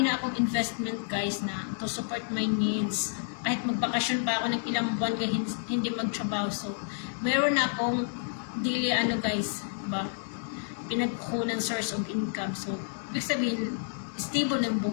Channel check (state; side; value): silent; right; digital silence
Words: na akong investment guys na to support my needs. Kahit magbakasyon pa ako ng ilang buwan hindi magtrabaho. So, meron na akong daily guys, diba? Pinagkukunan source of income. So, ibig sabihin, stable ng